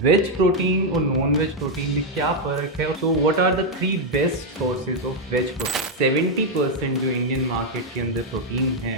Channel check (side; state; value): both; normal; correlation 0.01